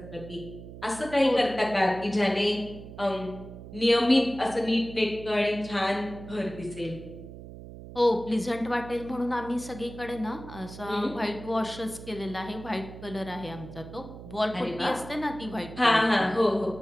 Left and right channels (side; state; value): right; noise; hum, 14 dB below the sound